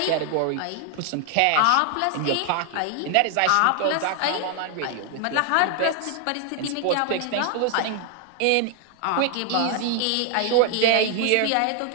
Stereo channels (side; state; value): both; different; correlation 0.00